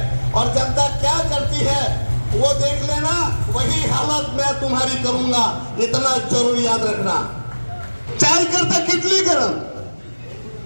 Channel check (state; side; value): inverted; both; correlation -1.00